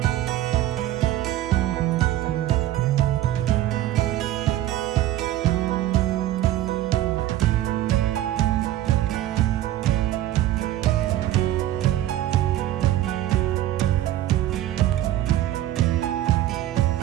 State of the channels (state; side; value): quieter; left; 13.6 dB